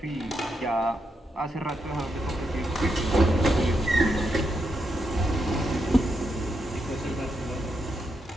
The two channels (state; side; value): normal; both; correlation 0.82